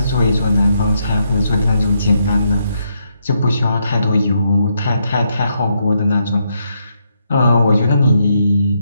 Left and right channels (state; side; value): inverted; both; correlation -0.78